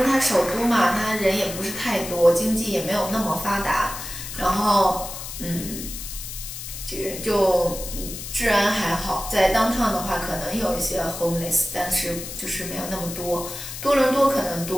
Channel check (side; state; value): left; noise; hiss, 9 dB below the sound